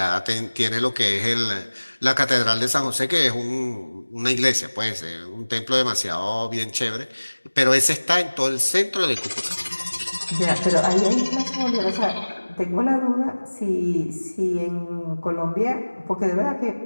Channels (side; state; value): both; inverted; correlation -1.00